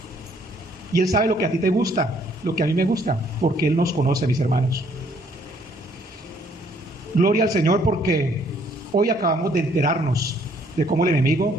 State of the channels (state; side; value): normal; both; correlation 0.64